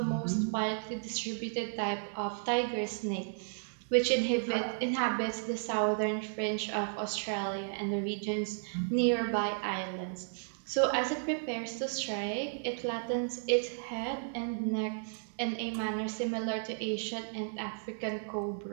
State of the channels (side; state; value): left; silent; digital silence